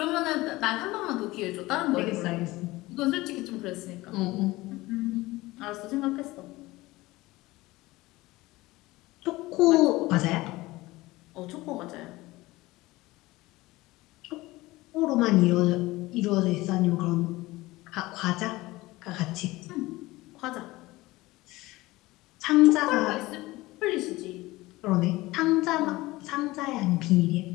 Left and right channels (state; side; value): quieter; right; 19.6 dB